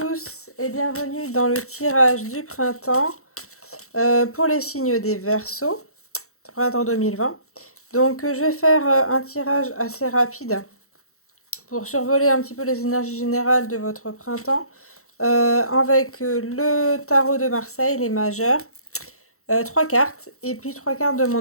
et bienvenue dans le tirage du printemps pour les signes des Verseaux, printemps 2020. Donc je vais faire un tirage assez rapide pour survoler un petit peu les énergies générales de votre printemps avec le tarot de Marseille, les majeurs, 3 cartes et puis 3 cartes de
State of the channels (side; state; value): right; late; 0.64 ms